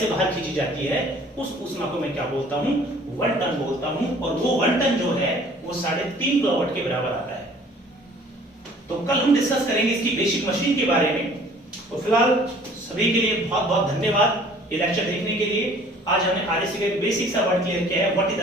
बाहर खींची जाती है उस ऊष्मा को मैं क्या बोलता हूं, 1 टन बोलता हूं। और वो 1 टन जो है वो 3.5 किलोवाट के बराबर आता है। तो कल हम डिस्कस करेंगे इसकी बेसिक मशीन के बारे में। तो फिलहाल सभी के लिए बहुत बहुत धन्यवाद ये लेक्चर देखने के लिए। आज हमने आरएसी का बेसिक सा वर्ड क्लियर किया है, व्हाट इज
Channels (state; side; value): normal; both; correlation 0.53